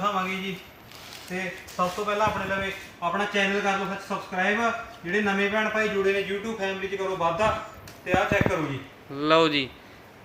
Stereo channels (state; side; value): identical; both; correlation 1.00